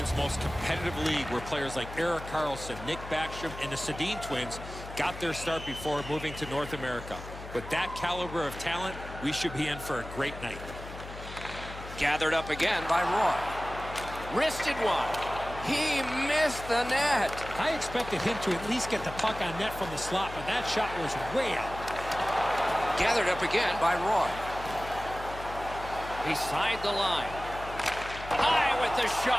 most competitive league, where players like Erik Karlsson, Nick Backstrom, and the Sedin twins got their start before moving to North America. With that caliber of talent, we should be in for a great night. Gathered up again by Roy. Wristed one. He missed the net. I expected him to at least get the puck on net from the slot, but that shot was way out. Gathered up again by Roy. Beside the line. High with the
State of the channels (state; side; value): noise; left; hum, 12 dB below the sound